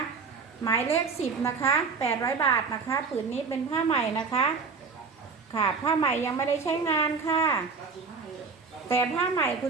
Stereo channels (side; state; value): left; quieter; 5.1 dB